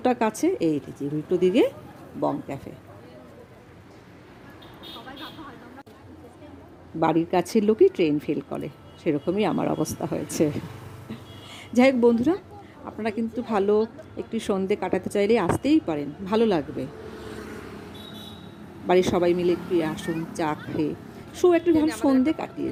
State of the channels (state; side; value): identical; both; correlation 1.00